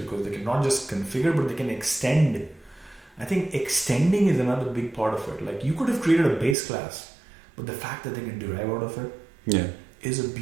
they can not just configure, but they can extend. I think extending is another big part of it. Like, you could have created a base class, but the fact that they can derive out of it is a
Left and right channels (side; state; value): left; drops out; at 6.6 s